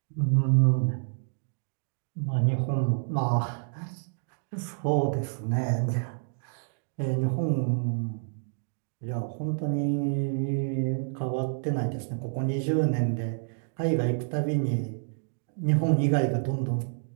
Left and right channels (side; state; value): left; silent; digital silence